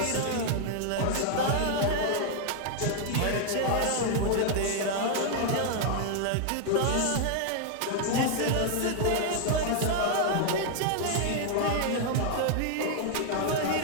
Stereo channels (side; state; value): both; different; correlation 0.00